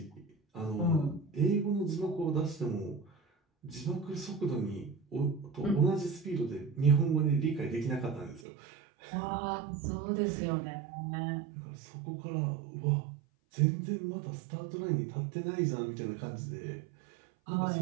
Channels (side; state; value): left; drops out; at 8.4 s